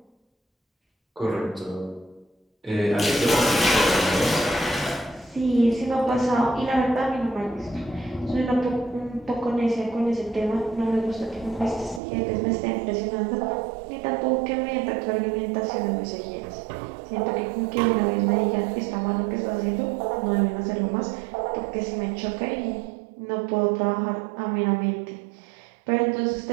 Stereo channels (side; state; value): left; drops out; at 12.0 s